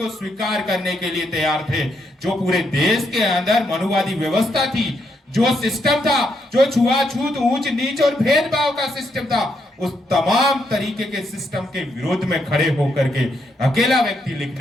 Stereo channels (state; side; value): normal; both; correlation 0.78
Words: स्वीकार करने के लिए तैयार थे। जो पूरे देश के अंदर मनुवादी व्यवस्था थी, जो सिस्टम था, जो छुआछूत, ऊंच नीच और भेदभाव का सिस्टम था, उस तमाम तरीके के सिस्टम के विरोध में खड़े होकर के अकेला व्यक्ति